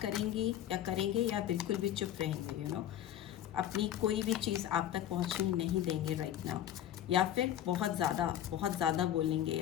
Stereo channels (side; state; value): right; quieter; 11.5 dB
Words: करेंगी या करेंगे, या बिल्कुल भी चुप रहेंगे, यू नो, अपनी कोई भी चीज़ आप तक पहुंचने नहीं देंगे राइट नाउ, या फिर बहुत ज़्यादा बोलेंगे